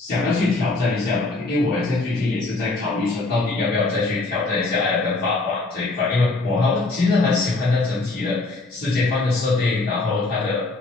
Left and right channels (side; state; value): right; quieter; 3.3 dB